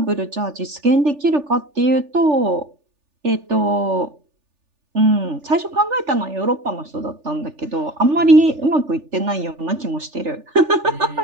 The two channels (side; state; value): left; late; 3.4 ms